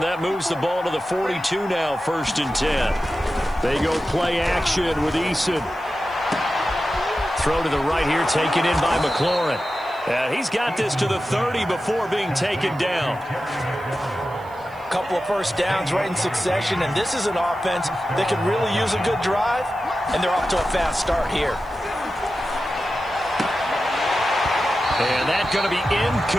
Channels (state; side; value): noise; right; hiss, 28 dB below the sound